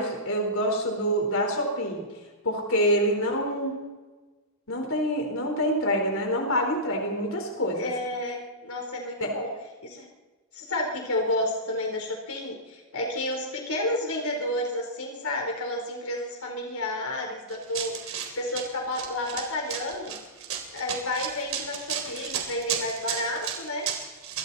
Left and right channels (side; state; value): both; normal; correlation -0.19